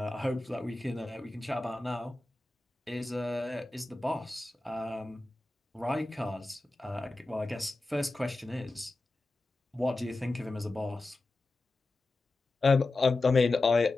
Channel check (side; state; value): right; quieter; 3.0 dB